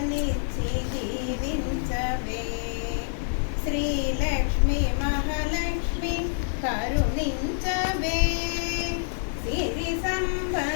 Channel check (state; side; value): silent; right; 55 dB below the other